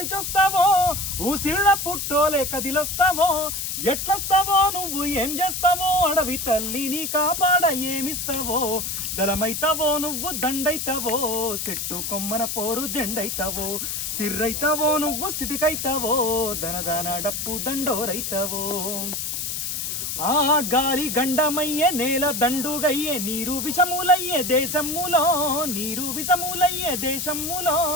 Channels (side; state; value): left; noise; hiss, 3 dB below the sound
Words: ఊసిళ్ళ పుట్టోలే కదిలొస్తావో ఎట్లొస్తావో నువ్వు ఏం చేస్తావో అడవి తల్లిని కాపాడ ఏమిస్తావో దళమైతావో నువ్వు దండైతావో సెట్టు కొమ్మన పోరు జెండైతావో సిర్రైతావో నువ్వు సిటికైతావో దనదాన డప్పు దండోరైతావో ఆ గాలి గండమయ్యే నేల దండుగయ్యే నీరు విషములయ్యే దేశములో నీరు విషములయ్యే దేశములో